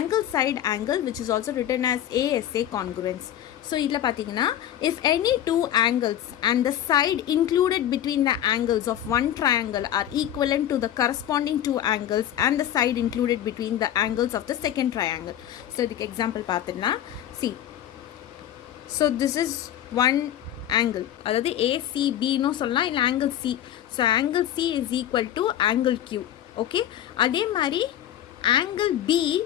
side angle, which is also written as ASA congruence. So idla pathina, if any two angles and the side included between the angles of one triangle are equivalent to the corresponding two angles and the side included between the angles of the second triangle. So the example pathina, see, so this is one angle, adhaadu ACB no solla illa angle C. So angle C is equal to angle Q. Okay, அதே மாதிரி angle B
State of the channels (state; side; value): quieter; right; 11.4 dB